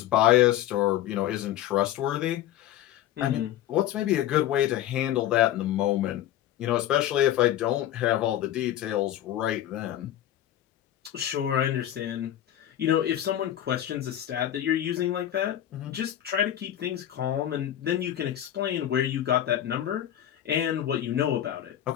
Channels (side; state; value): right; quieter; 12.0 dB